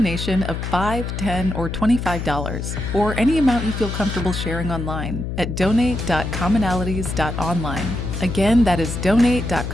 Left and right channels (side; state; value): left; noise; hum, 4 dB below the sound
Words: of $5, $10, or $25, or any amount you feel comfortable sharing online at donate.commonalities.online. Again, that is